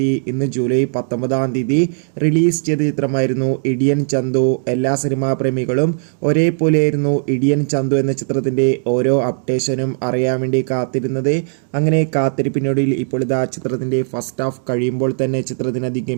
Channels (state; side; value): silent; left; digital silence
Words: ഇന്ന് ജൂലൈ 19 റിലീസ് ചെയ്ത ചിത്രമായിരുന്നു ഇടിയൻ ചന്തു. എല്ലാ സിനിമാ പ്രേമികളും ഒരേപോലെയായിരുന്നു ഇടിയൻ ചന്തു എന്ന ചിത്രത്തിൻ്റെ ഓരോ അപ്ഡേഷനും അറിയാൻ വേണ്ടി കാത്തിരുന്നത്. അങ്ങനെ കാത്തിരിപ്പിനൊടുവിൽ ഇപ്പോൾ ഇതാ ചിത്രത്തിൻ്റെ ഫസ്റ്റ് ഹാഫ് കഴിയുമ്പോൾ തന്നെ ചിത്രത്തിന്